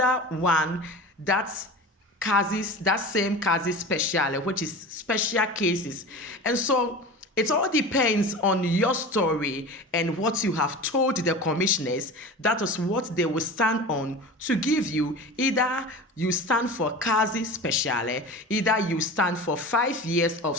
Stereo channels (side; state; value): both; normal; correlation 0.33